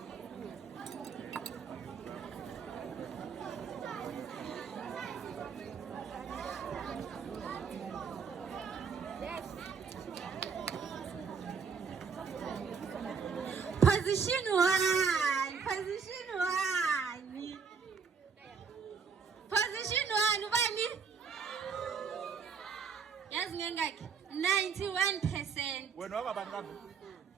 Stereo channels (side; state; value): left; quieter; 5.8 dB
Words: Position 1. Position 1. Position 1 ubani? Yazi ngengakhe 91%. Wena wakabani kambe?